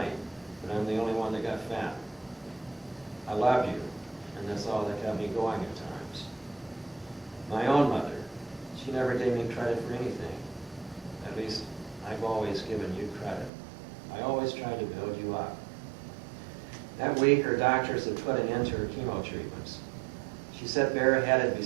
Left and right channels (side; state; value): left; drops out; at 13.5 s